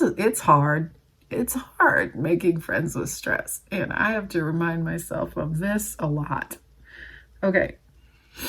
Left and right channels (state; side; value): identical; both; correlation 1.00